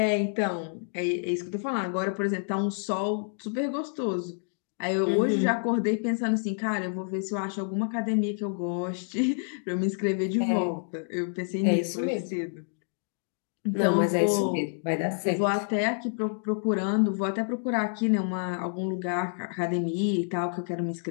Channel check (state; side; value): silent; right; digital silence